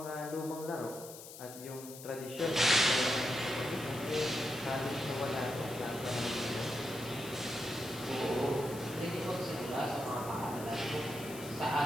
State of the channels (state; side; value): noise; left; hiss, 14 dB below the sound